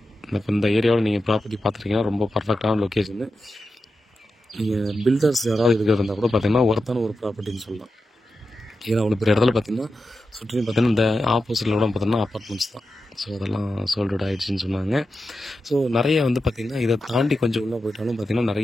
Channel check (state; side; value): normal; both; correlation 0.90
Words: இப்போ இந்த ஏரியாவில் நீங்கள் ப்ராப்பர்ட்டி பார்த்துருக்கீங்கன்னா ரொம்ப பர்ஃபெக்டான லொக்கேஷனு. நீங்கள் பில்டர்ஸ் யாராவது இருக்கிறது இருந்தால் கூட பார்த்திங்கன்னா ஒருத்தான ஒரு ப்ராப்பர்ட்டின்னு சொல்லலாம். ஏன்னா அவ்வளோ பெரிய இடத்துல பார்த்திங்கன்னா சுற்றி பார்த்திங்கன்னா இந்த ஆப்போசிட்டில் கூட பார்த்திங்கன்னா அப்பார்ட்மெண்ட்ஸ் தான். ஸோ அதெல்லாம் சோல்டு ஆகிடுச்சின்னு சொன்னாங்க. ஸோ நிறைய வந்து பார்த்திங்கன்னா இதை தாண்டி கொஞ்சம் உள்ளே போயிட்டாலும் பார்த்திங்கன்னா